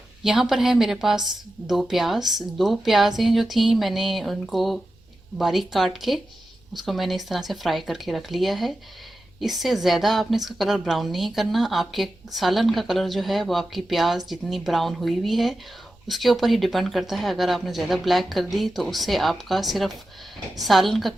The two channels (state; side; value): noise; right; rumble, 30 dB below the sound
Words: यहाँ पर है मेरे पास दो प्याज़ें जो थी, मैंने उनको बारीक काट के उसको मैंने इस तरह से फ्राई करके रख लिया है। इससे ज़्यादा आपने इसका कलर ब्राउन नहीं करना। आपके सालन का कलर जो है वो आपकी प्याज जितनी ब्राउन हुई हुई है उसके ऊपर ही डिपेंड करता है। अगर आपने ज़्यादा ब्लैक कर दी तो उससे आपका सिर्फ सालन का